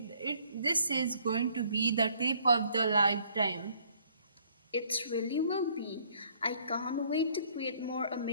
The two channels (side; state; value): both; inverted; correlation -0.62